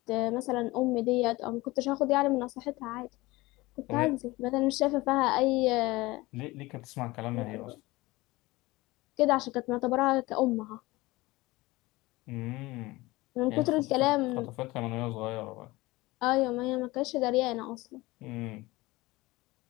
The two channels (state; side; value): quieter; right; 20.8 dB